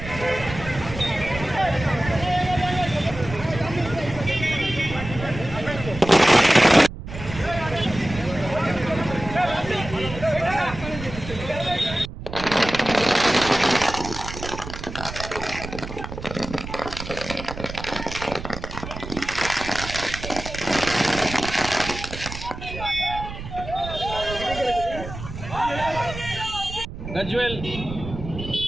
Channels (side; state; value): right; noise; rumble, 10 dB below the sound